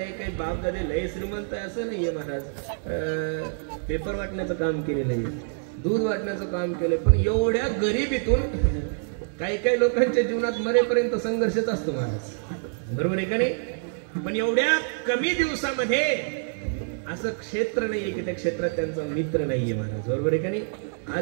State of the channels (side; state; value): left; silent; 61 dB below the other